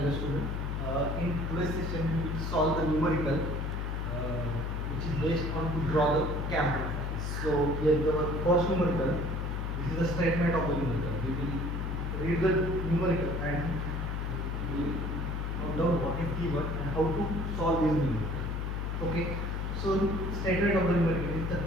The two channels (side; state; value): left; noise; hum, 2 dB below the sound